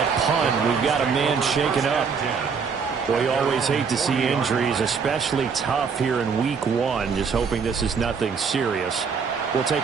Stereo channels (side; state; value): left; quieter; 5.9 dB